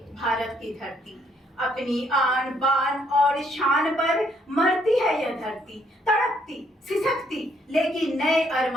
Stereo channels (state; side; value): normal; both; correlation 0.69